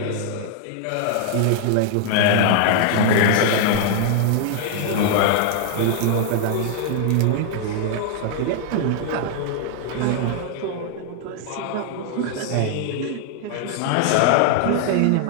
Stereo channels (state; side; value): different; both; correlation -0.01